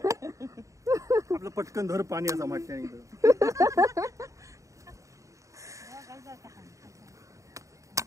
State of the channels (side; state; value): left; late; 0.16 ms